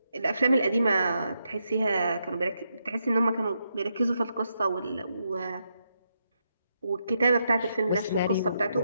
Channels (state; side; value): inverted; both; correlation -0.81